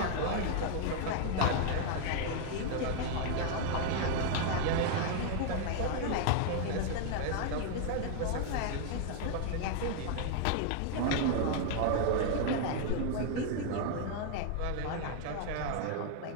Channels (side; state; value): both; different; correlation 0.00